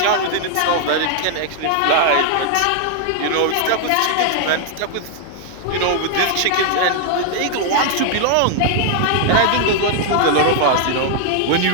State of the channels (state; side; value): different; both; correlation 0.00